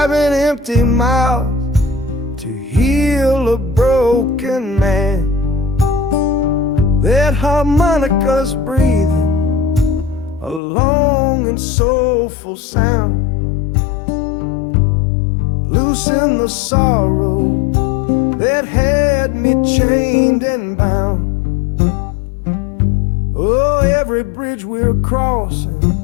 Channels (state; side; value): drops out; right; at 10.6 s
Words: empty mouths to heal a broken man. That harmonica's breathing a long and soulful sound, loosen the sorrow that had me chained and bound. Oh, every bridge we're crossing,